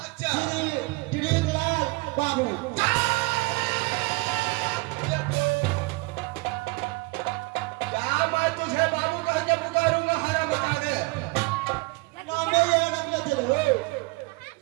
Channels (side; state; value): left; quieter; 25.9 dB